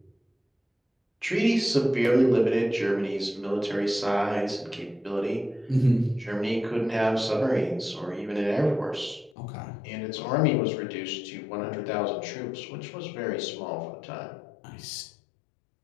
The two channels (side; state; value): right; drops out; at 9.3 s